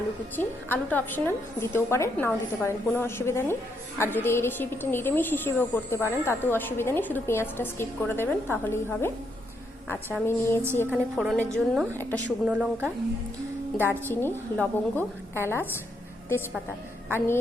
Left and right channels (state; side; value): normal; both; correlation 0.77